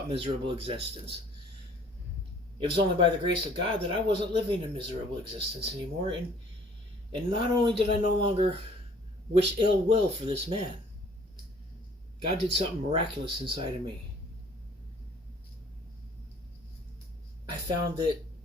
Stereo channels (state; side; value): normal; both; correlation 0.55